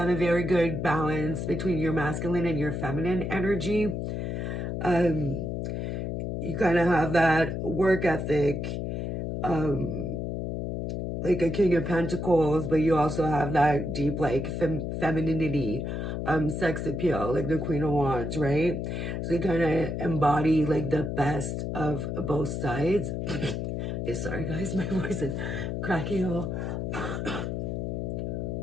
a very good balance between your masculine and your feminine energy. You kind of have that work ethic, like a king of pentacles, but you also have that deep like femininity, sex appeal, like the queen of wands, right? So you kind of embody like the best of both sides. Sorry guys, my voice is cracking a little.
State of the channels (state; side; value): noise; left; hum, 3 dB below the sound